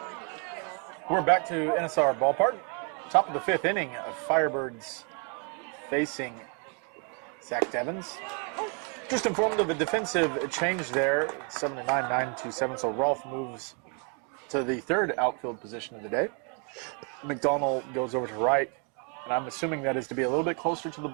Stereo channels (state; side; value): quieter; left; 37.8 dB